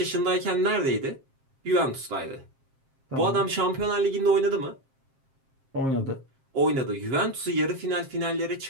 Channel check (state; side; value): late; left; 7.5 ms